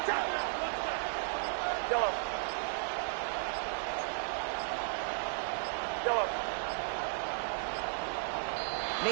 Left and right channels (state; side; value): silent; left; digital silence